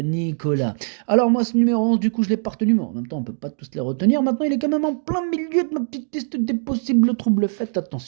Nicolas. Alors, moi, ce numéro 11, du coup, je l'ai pas retenu, mais en même temps, on peut pas tous les retenir. Maintenant, il est quand même en plein milieu de ma petite liste des possibles troubles. Faites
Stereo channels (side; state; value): left; silent; digital silence